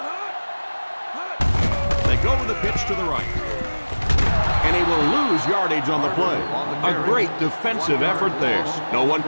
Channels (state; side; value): inverted; both; correlation -1.00